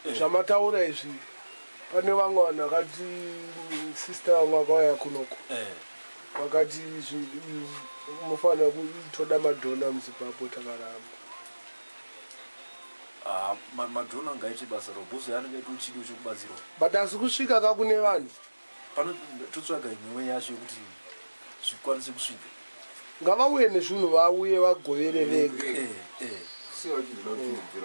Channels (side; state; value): both; inverted; correlation -1.00